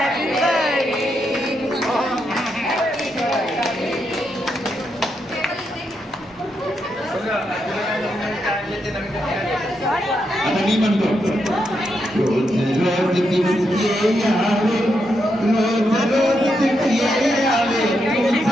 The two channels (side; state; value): both; normal; correlation 0.82